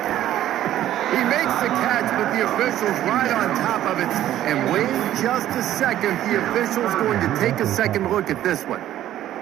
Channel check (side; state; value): left; quieter; 12.6 dB